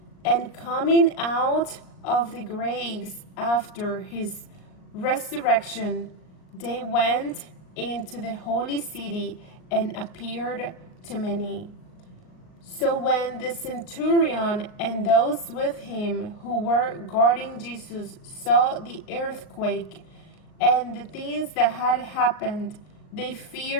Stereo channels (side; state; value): right; late; 38 ms